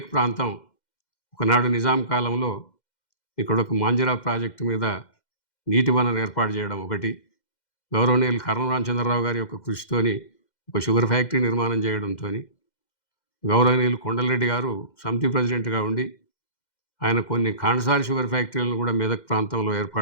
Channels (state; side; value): late; right; 2.1 ms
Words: ప్రాంతం ఒకనాడు నిజాం కాలంలో ఇక్కడ ఒక మాంజరా ప్రాజెక్టు మీద నీటి వనరు ఏర్పాటు చేయడం ఒకటి, గౌరవనీయులు కర్నూలు రామచంద్రరావు గారి యొక్క కృషితోని ఒక షుగర్ ఫ్యాక్టరీ నిర్మాణం చేయడంతో, గౌరవనీయులు కొండలరెడ్డి గారు సమితి ప్రెసిడెంట్గా ఉండి ఆయన కొన్ని కాండసారి షుగర్ ఫ్యాక్టరీలను కూడా మెదక్ ప్రాంతంలో